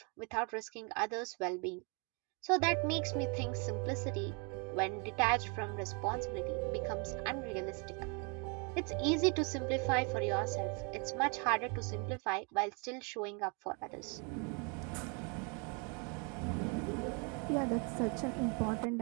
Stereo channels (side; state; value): left; quieter; 35.0 dB